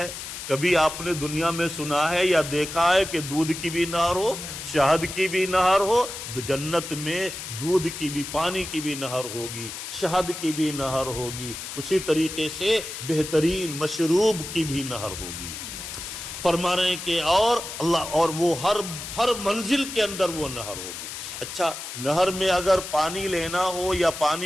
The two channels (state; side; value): noise; left; hiss, 9 dB below the sound